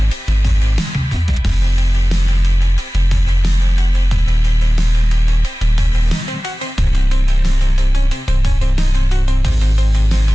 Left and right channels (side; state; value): both; normal; correlation 0.97